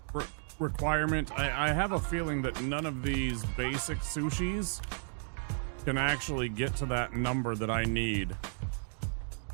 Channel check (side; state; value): left; silent; 56 dB below the other